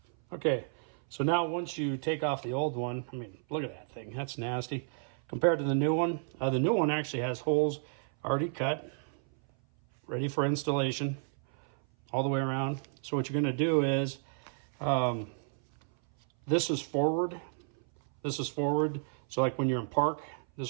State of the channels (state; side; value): silent; left; 57 dB below the other